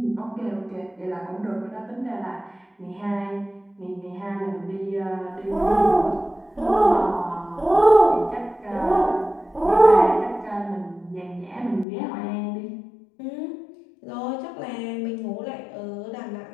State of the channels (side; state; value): right; drops out; at 11.9 s